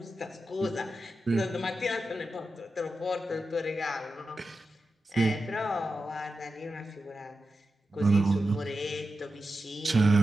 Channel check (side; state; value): both; normal; correlation 0.91